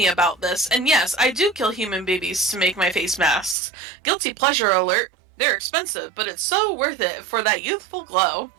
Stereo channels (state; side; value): drops out; left; at 3.6 s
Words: about this, and yes, I do kill human babies to make my face masks. Guilty pleasure alert. They're expensive, but it's so worth it for that youthful glow.